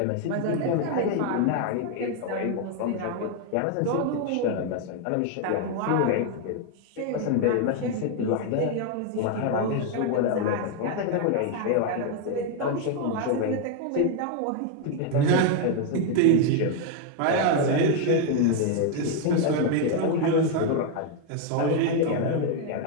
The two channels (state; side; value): different; both; correlation 0.01